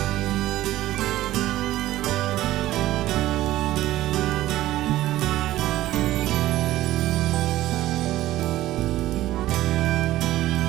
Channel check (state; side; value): quieter; left; 15.2 dB